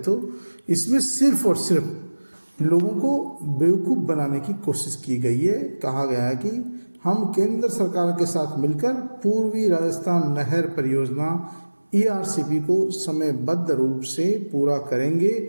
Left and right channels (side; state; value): both; inverted; correlation -1.00